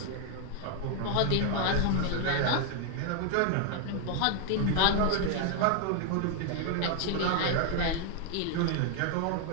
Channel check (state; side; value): different; both; correlation 0.00